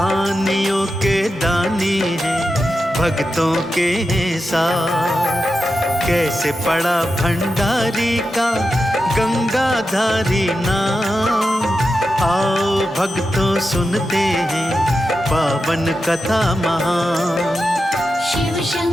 के दानी हैं भक्तों के हैं साथ। कैसे पड़ा भंडारी का गंगाधारी नाम, आओ भक्तों सुनते हैं पावन कथा महान। शिव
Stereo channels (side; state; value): both; normal; correlation 0.90